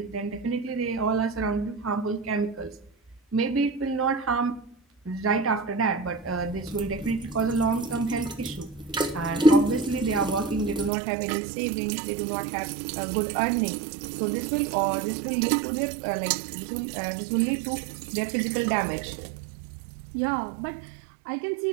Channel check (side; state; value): left; drops out; at 10.9 s